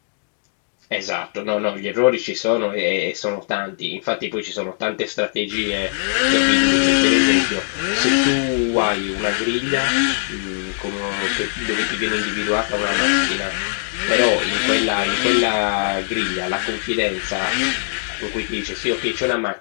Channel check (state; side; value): silent; right; digital silence